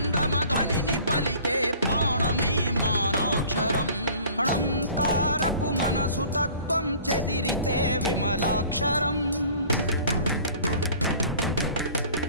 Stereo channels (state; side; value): inverted; both; correlation -0.48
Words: ధ్వనిని పలికే ప్రాణమే మానాక్షరం ణంకారపు మనసు తత్వం చెదిరితే విమలాక్షరం